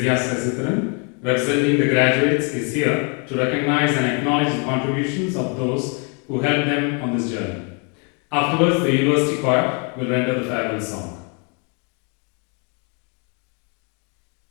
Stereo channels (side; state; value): right; quieter; 36.4 dB